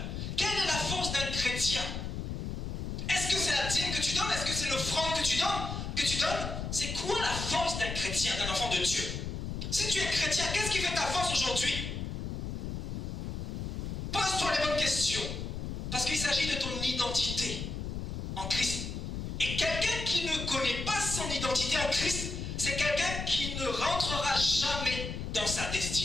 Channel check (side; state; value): left; noise; rumble, 5 dB below the sound